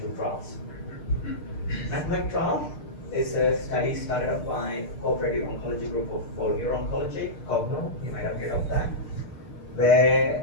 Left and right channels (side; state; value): right; late; 6.6 ms